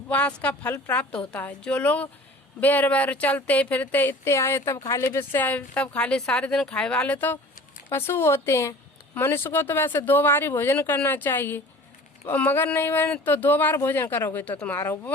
का फल प्राप्त होता है। जो लोग बेर बेर चलते फिरते इतने आए तब खाली, बिस्से आए तब खाली, सारे दिन खाए वाले तो पशु होते हैं। मनुष्य को तो वैसे 2 बार ही भोजन करना चाहिए, मगर नहीं बने तो 2 बार भोजन करोगे तो तुम्हारा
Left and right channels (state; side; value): normal; both; correlation 0.43